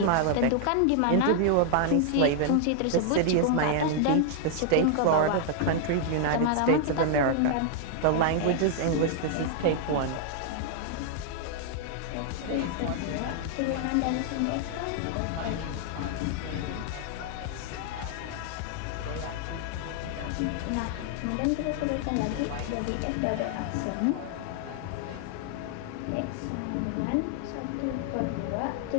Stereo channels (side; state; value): both; different; correlation 0.00